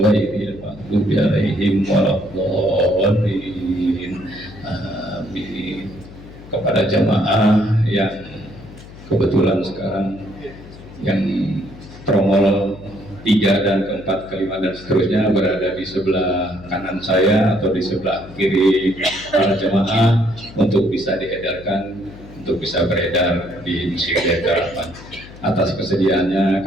maghdubi 'alaihim waladdallin amin. Kepada jamaah yang kebetulan sekarang yang tromol 3 dan keempat, kelima dan seterusnya berada di sebelah kanan saya atau di sebelah kiri para jemaah untuk bisa diedarkan, untuk bisa beredar di Masjid Harapan. Atas kesediaannya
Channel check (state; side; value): noise; left; hum, 17 dB below the sound